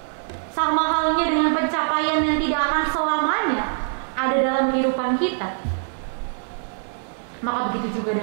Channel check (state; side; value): silent; left; digital silence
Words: Sama halnya dengan pencapaian yang tidak akan selamanya ada dalam kehidupan kita, maka begitu juga